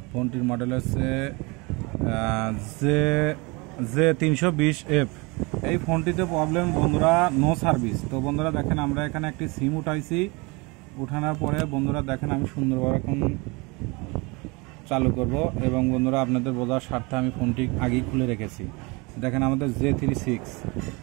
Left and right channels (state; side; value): quieter; left; 27.1 dB